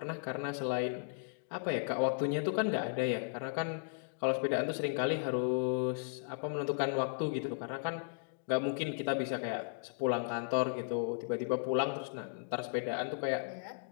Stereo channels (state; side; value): silent; right; digital silence